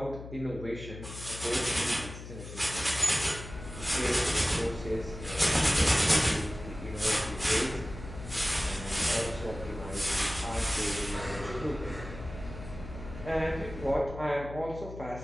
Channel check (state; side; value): noise; left; hum, 11 dB below the sound